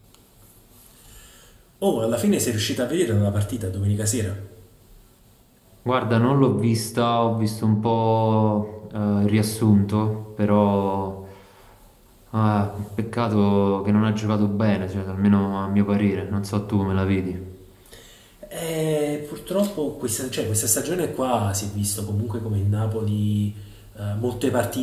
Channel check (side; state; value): both; identical; correlation 1.00